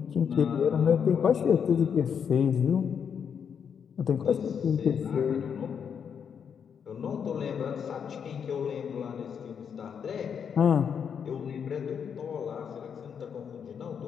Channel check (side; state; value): right; quieter; 7.3 dB